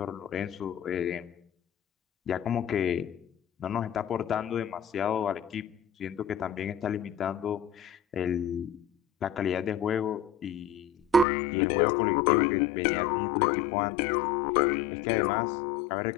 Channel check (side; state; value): right; drops out; at 11.2 s